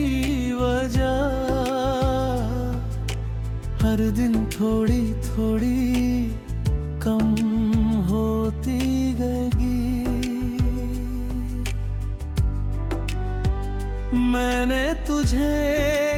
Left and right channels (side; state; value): both; identical; correlation 1.00